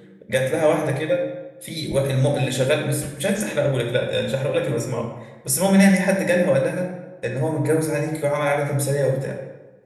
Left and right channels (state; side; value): identical; both; correlation 1.00